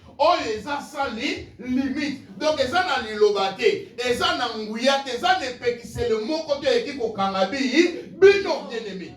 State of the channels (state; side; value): identical; both; correlation 1.00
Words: oyo eza sans limite donc eza na liloba te eza na nguya te eza na epekisele moko te eki kokanga bino bien aimé